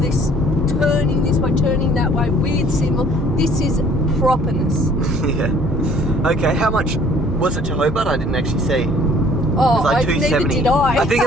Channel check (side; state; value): right; noise; hum, 14 dB below the sound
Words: turning this way, turning that way, weird symbol. This is properness. Yeah. Okay, how much was it to Hobart? I didn't actually see. Oh, like neither did I. I think it